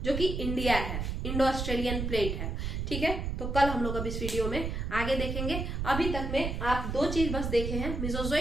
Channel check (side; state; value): right; noise; rumble, 3 dB below the sound